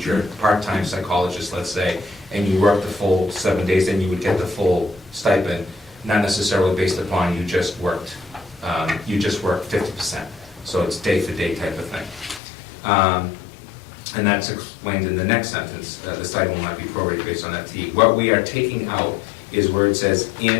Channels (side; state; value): right; drops out; at 12.4 s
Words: part-time psychologist, let's say, and you work the full 7 days, then you would get the full stipend, not necessarily based upon you just worked 50%. So it's day-for-day type of thing. And that's explained in the next sentence. The stipend will not be prorated based on FTE. What we are taking out is where it says,